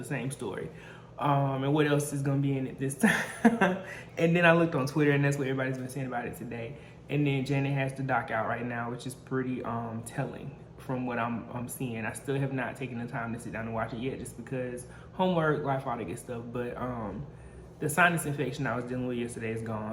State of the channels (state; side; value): identical; both; correlation 1.00